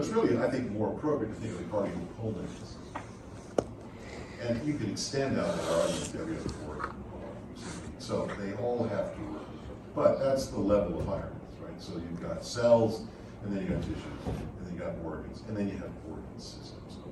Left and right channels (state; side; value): identical; both; correlation 1.00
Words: it's really, I think, more appropriate to think of the cardiopulmonary system. And you can extend out that argument to every other organ. So they all have to work. But that's the level of hierarchy, right? So you've got cells, and then you got tissues, and then you got organs, and then you have organ systems. So